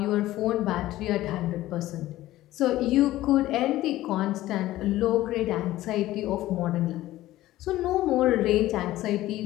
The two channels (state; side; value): quieter; right; 15.6 dB